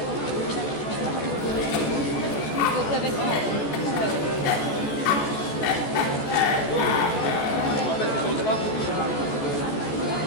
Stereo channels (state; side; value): late; right; 14 ms